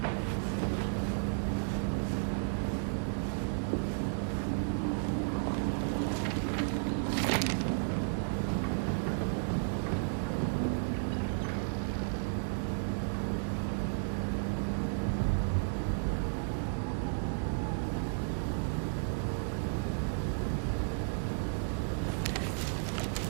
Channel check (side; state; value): left; silent; digital silence